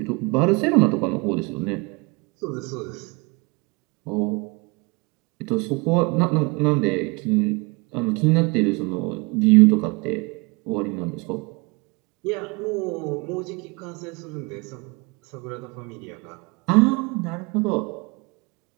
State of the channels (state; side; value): quieter; left; 27.8 dB